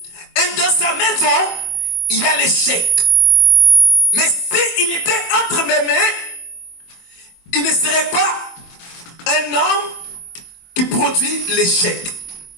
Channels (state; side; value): late; right; 24 ms